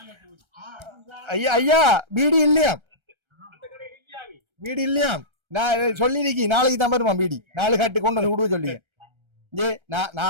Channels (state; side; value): late; left; 1.3 ms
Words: ஐயா ஐயா பீடி இல்லையா? பீடி இல்லையா? நான் சொல்லிருக்கேன் நாளைக்கு தான் வருமா பீடி. 4 கட்டு கொண்டு வந்து விடுவ சொல்லி